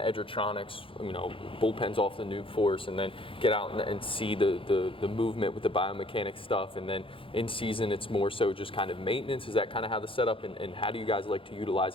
you know, bullpens off the new force, and then get out and see the movement with the biomechanics stuff, and then in season it's more so just kind of maintenance? Is that kind of how the setup, and how do you guys like to utilize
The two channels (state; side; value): late; right; 0.26 ms